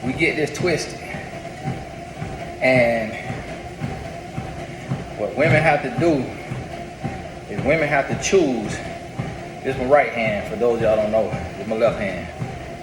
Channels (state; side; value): identical; both; correlation 1.00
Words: we get this twisted. And what women have to do is women have to choose. This is my right hand, for those of y'all don't know. This is my left hand.